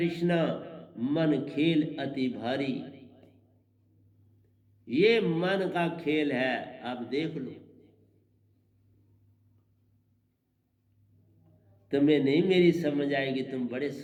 मन खेल अति भारी। ये मन का खेल है, आप देख लो। तुम्हें नहीं मेरी समझ आएगी, तुम बड़े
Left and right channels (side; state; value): both; identical; correlation 1.00